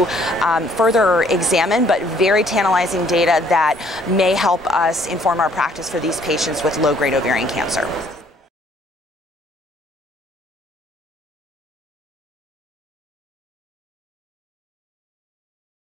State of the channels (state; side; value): normal; both; correlation 0.62